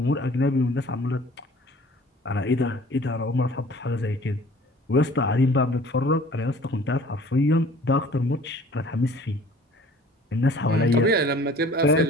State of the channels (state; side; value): normal; both; correlation 0.50